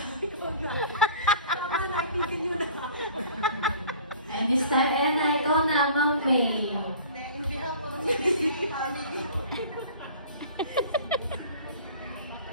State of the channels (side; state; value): both; inverted; correlation -0.46